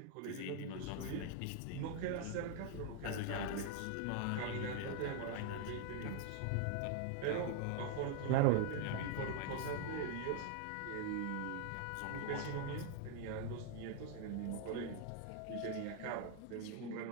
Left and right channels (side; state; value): both; different; correlation 0.00